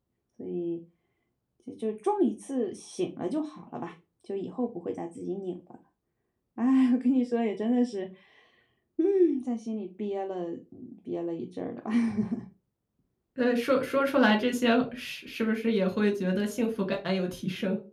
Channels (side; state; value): both; identical; correlation 1.00